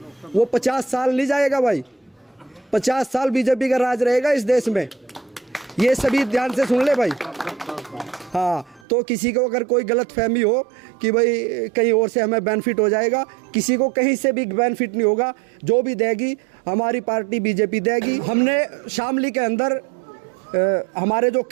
वो 50 साल नहीं जाएगा भाई, 50 साल बीजेपी का राज रहेगा इस देश में। ये सभी ध्यान से सुन ले भाई। हाँ, तो किसी को अगर कोई गलत फहमी हो कि भाई कहीं और से हमें बेनिफिट हो जाएगा, किसी को कहीं से भी बेनिफिट नहीं होगा। जो भी देगी हमारी पार्टी बीजेपी देगी। हमने शामली के अंदर हमारे जो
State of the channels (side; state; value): left; drops out; at 8.8 s